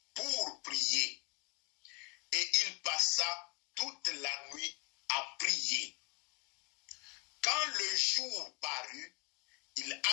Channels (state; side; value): quieter; right; 29.7 dB